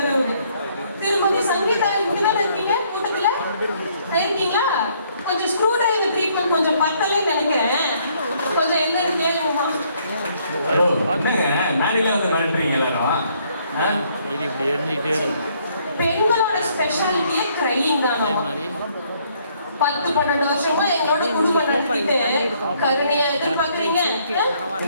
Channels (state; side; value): inverted; both; correlation -0.67